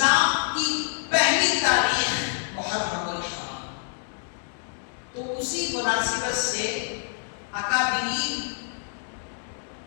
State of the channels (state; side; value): silent; right; digital silence